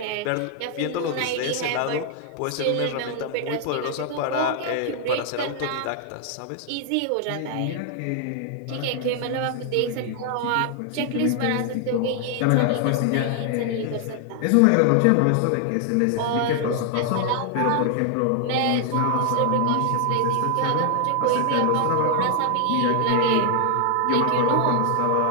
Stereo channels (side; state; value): both; different; correlation 0.00